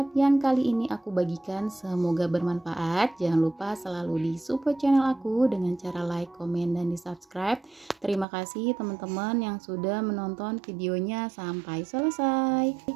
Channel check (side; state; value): left; drops out; at 8.2 s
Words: yang kali ini aku bagikan, semoga bermanfaat. Jangan lupa selalu di support channel aku dengan cara like, komen, dan di subscribe. Terima kasih teman-teman yang sudah menonton videonya sampai selesai.